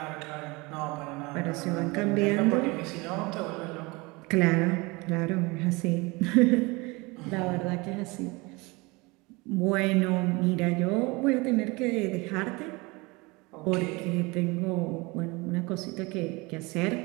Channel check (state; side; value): quieter; left; 25.0 dB